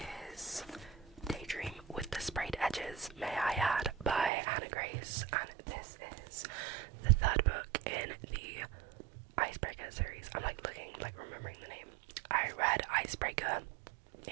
is Daydream with the Sprayed Edges, May I Add, by Hannah Grace, and this is the third book in the Icebreaker series. I'm remembering the name. I read Icebreaker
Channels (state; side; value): drops out; left; at 4.3 s